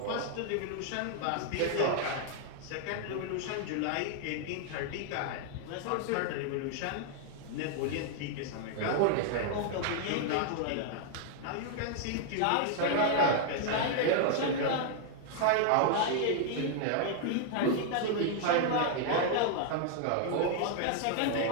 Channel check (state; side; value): different; both; correlation 0.00